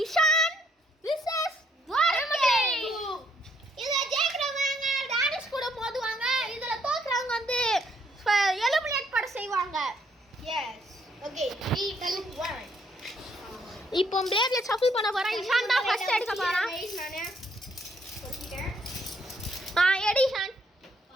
இஷான் vs துவாரகேஷ். இதுல ஜெயிக்கிறவங்க டானிஸ் கூட மோதுவாங்க. இதுல தோக்குறவங்க வந்து எலிமினேட் பண்ண செய்வாங்க. S okay 3 2 1. இப்போ பிளேட்ல ஷஃபிள் பண்ண போறேன். இஷான் தான் ஃபர்ஸ்ட் எடுக்க போறான். நானே சொல்லிட்டேன். எடிஷன்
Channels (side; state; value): both; normal; correlation 0.69